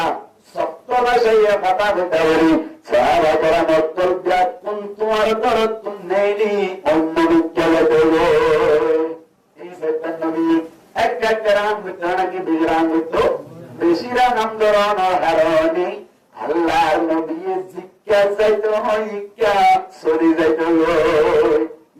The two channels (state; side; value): identical; both; correlation 1.00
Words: সত্য ভাষায় কথা হইতা বলি সাহাবা کرام উত্তর ব্যাকুন তোমার দরদ তুমি নেইনি অন্য বিজ্ঞানে দেব এই সত্যের নবী এক একরাম বিতরণা কি বিগ্রাম হইতো বেশিরা নাম ধরানোর হারণে আল্লাহর নবী জিজ্ঞা যাইতো ইকা সরি যাইতো